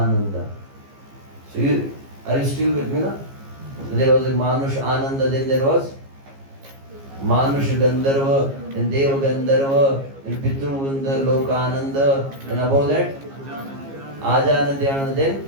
So are you still with me now? So there was a manush ananda, then there was manush gandharva, then deva gandharva, then pitru gandharva loka ananda, and above that ajana dhyana,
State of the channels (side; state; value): left; late; 15 ms